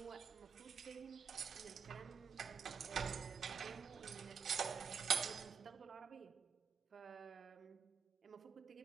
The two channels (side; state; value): left; quieter; 6.7 dB